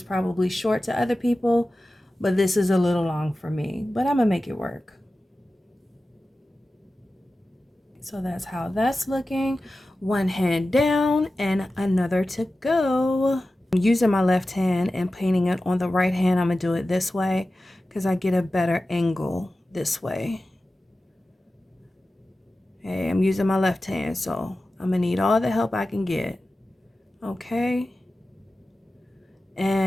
probably short to other people, but this is a little long for me. But I'm going to make it work. So that's how that's looking. One hand down and another to go. I'm using my left hand and painting it on the right hand. I'm going to do it this way because I get a better angle this way. Okay, I'm using my left hand, so I'm going to need all the help I can get. Okay.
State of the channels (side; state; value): both; normal; correlation 0.94